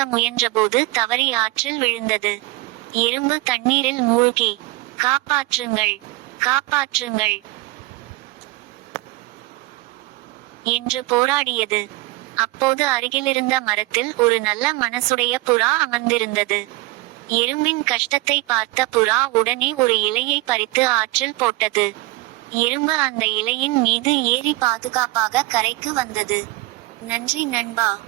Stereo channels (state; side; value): quieter; left; 20.3 dB